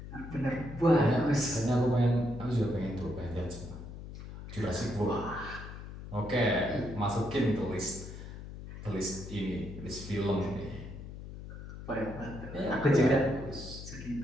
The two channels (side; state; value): left; noise; hum, 11 dB below the sound